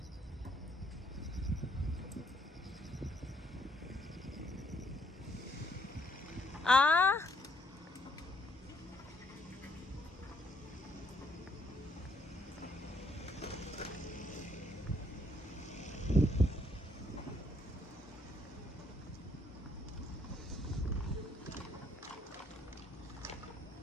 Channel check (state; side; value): normal; both; correlation 0.70